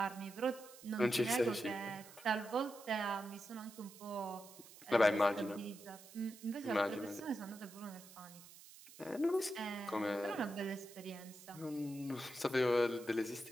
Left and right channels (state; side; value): noise; right; hiss, 18 dB below the sound